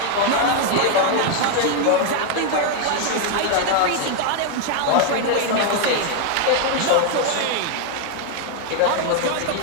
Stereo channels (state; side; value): different; both; correlation 0.00